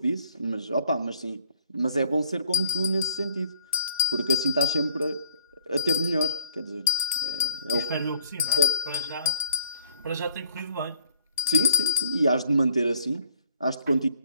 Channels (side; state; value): both; inverted; correlation -0.52